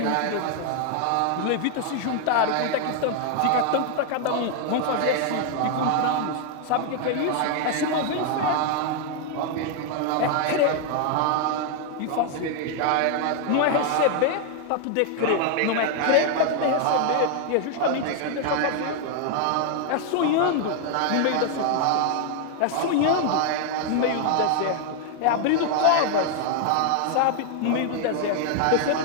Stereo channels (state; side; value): different; both; correlation 0.00